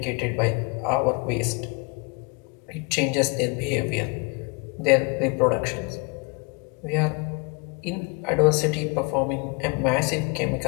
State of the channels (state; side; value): quieter; right; 30.6 dB